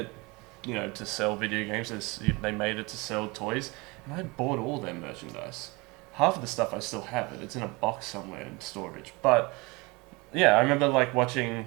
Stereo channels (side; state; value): left; quieter; 25.7 dB